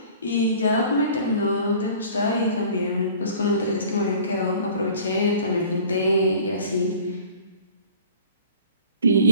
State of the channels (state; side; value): inverted; both; correlation -0.46